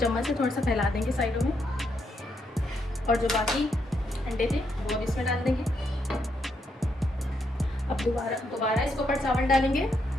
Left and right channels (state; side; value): normal; both; correlation 0.78